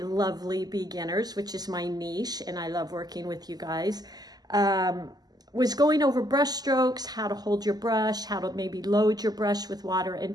beginners, which is my niche, and I love working with you guys, was going over brush strokes, how to hold your brush, how to maybe load your brush with water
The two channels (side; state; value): left; late; 0.19 ms